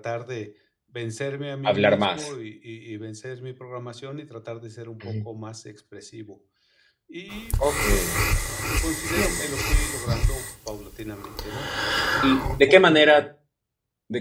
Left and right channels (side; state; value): both; identical; correlation 1.00